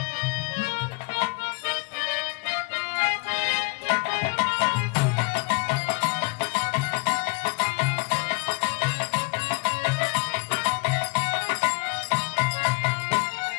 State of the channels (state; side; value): quieter; right; 29.4 dB